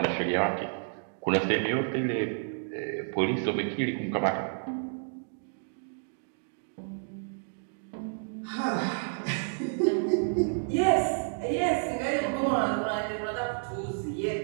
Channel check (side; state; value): left; silent; digital silence